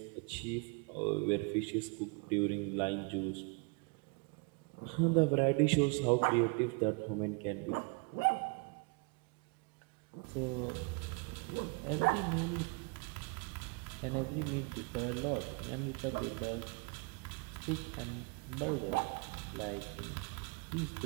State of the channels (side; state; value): left; quieter; 31.9 dB